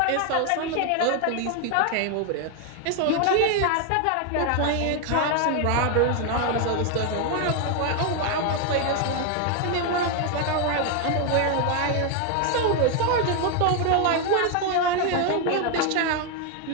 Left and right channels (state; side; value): different; both; correlation 0.01